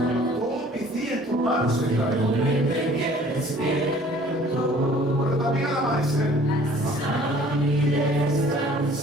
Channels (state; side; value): normal; both; correlation 0.53